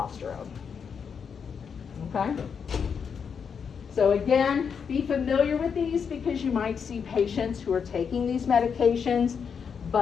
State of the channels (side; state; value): right; quieter; 6.6 dB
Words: Okay? So again, be familiar with these because you might see patients who are taking these medications,